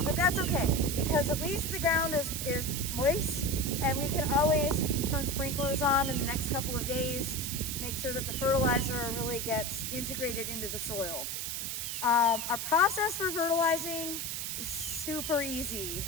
but that's okay because at least the ground is moist, and we can always turn sprinklers on in the next couple of days, make sure that the fertilizer really gets integrated into the soil. Our process for fertilizing is super easy.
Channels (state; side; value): noise; right; hiss, 3 dB below the sound